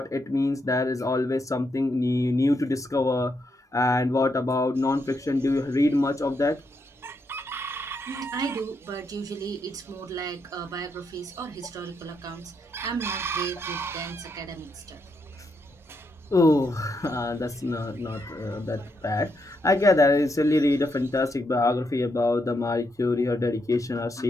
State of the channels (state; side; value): normal; both; correlation 0.80